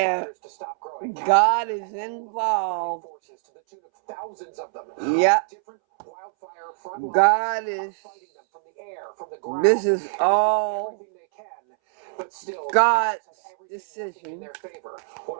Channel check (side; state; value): left; silent; 62 dB below the other